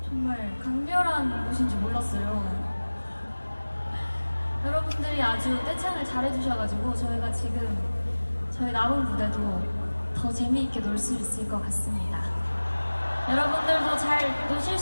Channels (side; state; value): both; inverted; correlation -1.00